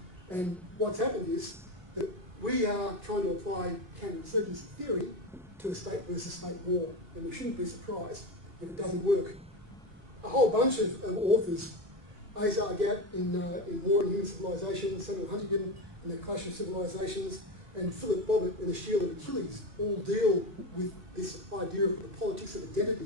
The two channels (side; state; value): left; late; 2.6 ms